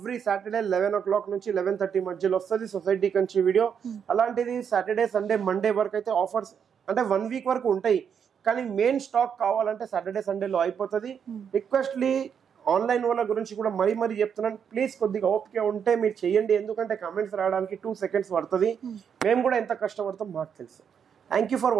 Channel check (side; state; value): left; quieter; 7.5 dB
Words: సాటర్డే 11 o'clock నుంచి 11:30 మధ్యలో వస్తుంది సొసైటీ కంచి వీడియో. అలాంటిది సాటర్డే, సండే, మండే వరకు అయితే ఆఫర్స్ అంటే 1 week వరకు ఉంటాయి. కానీ మెయిన్ స్టాక్ కావాలంటే సాటర్డే, సండేలో అయిపోతుంది. రిక్వెస్ట్లీ ఆన్లైన్ వాళ్ళ గురించి కూడా మరీ చెప్తున్నాను, ప్లీజ్ కొద్దిగా ఓపిక ఉంటే మీరు చేయండి. ఎందుకంటే కమెంట్స్ రావడానికి 2 seconds పడుతుంది. మేము కూడా ఎంత కష్టపడతాం మాకు తెలుసు. Thank you for